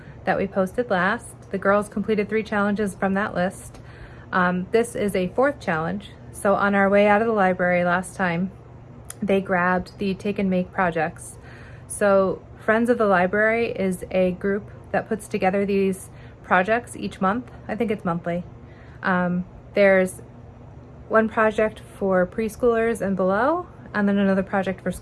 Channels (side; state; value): both; identical; correlation 1.00